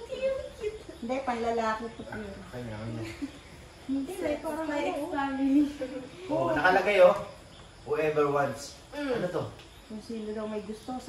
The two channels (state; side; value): identical; both; correlation 1.00